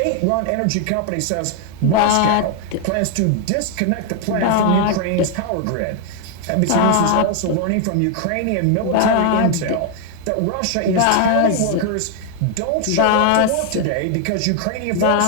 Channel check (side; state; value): both; different; correlation 0.00